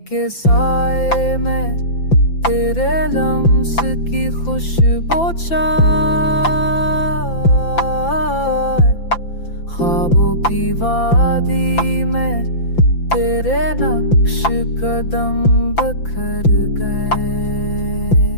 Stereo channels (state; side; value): late; right; 5.9 ms